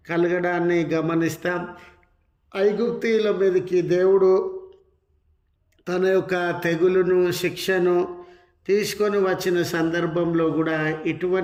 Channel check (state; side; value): identical; both; correlation 1.00